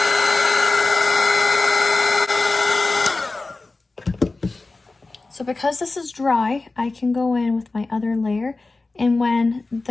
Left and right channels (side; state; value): right; quieter; 3.4 dB